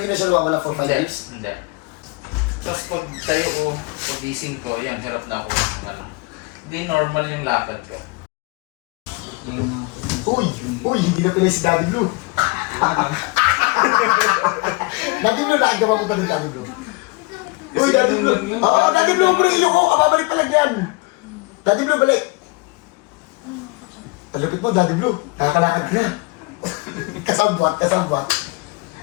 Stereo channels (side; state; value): right; quieter; 26.2 dB